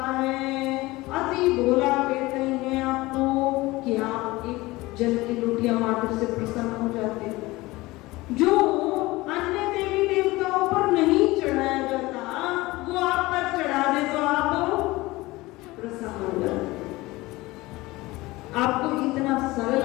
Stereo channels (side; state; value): right; quieter; 20.3 dB